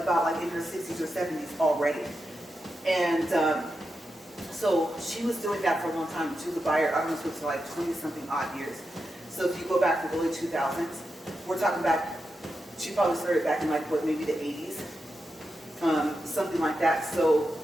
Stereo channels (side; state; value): both; normal; correlation 0.88